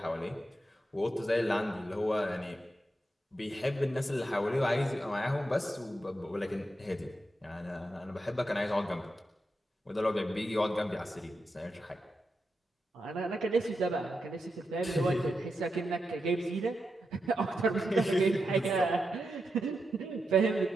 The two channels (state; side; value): normal; both; correlation 0.86